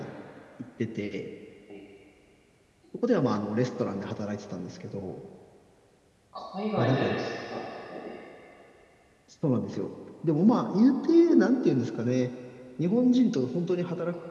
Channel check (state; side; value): identical; both; correlation 1.00